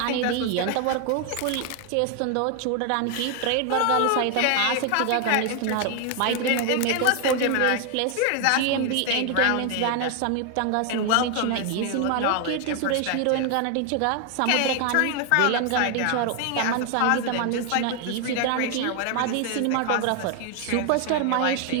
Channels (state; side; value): different; both; correlation 0.01